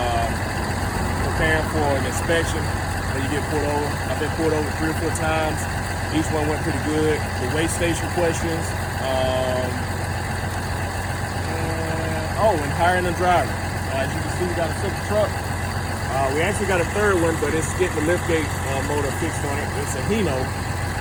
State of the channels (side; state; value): both; identical; correlation 1.00